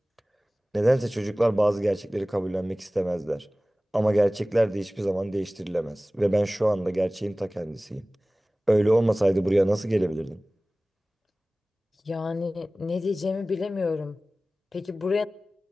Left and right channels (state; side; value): normal; both; correlation 0.98